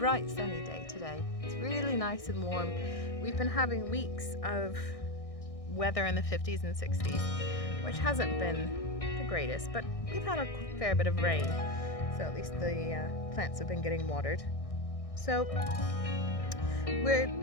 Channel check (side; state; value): right; late; 1.6 ms